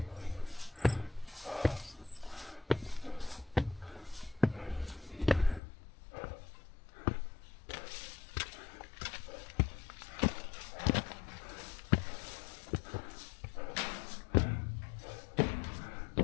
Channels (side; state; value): right; drops out; at 5.6 s